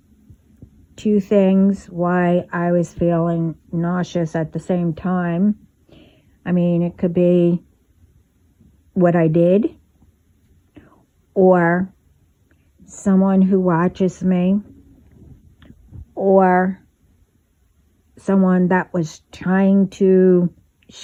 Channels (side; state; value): both; identical; correlation 1.00